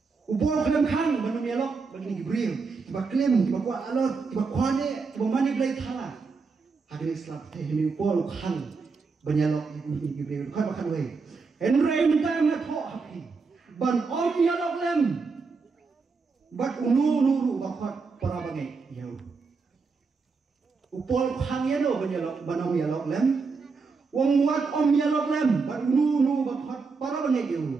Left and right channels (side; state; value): left; quieter; 4.7 dB